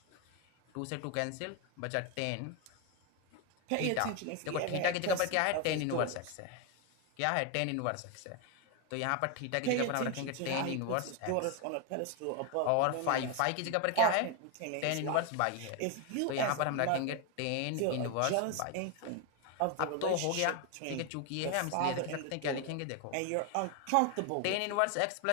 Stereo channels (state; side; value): different; both; correlation 0.01